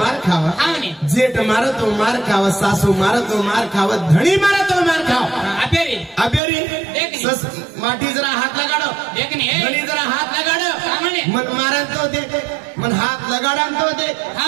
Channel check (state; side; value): drops out; left; at 6.4 s